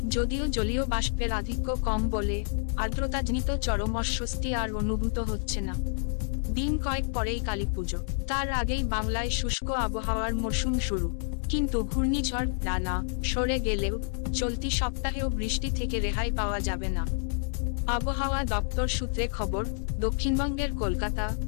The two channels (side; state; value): right; silent; 59 dB below the other